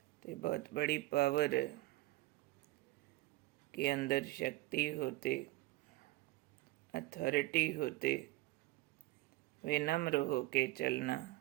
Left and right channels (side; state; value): left; quieter; 18.6 dB